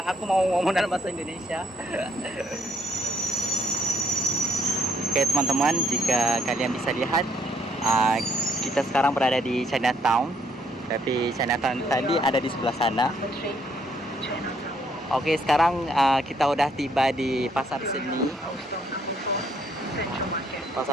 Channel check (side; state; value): both; normal; correlation 0.69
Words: aku mau ngomong dalam bahasa Indonesia. Oke teman-teman, jika kalian bisa lihat, kita sekarang berada di Chinatown, tapi Chinatown tadi ada di sebelah sana. Oke, sekarang kita udah tiba di pasar seni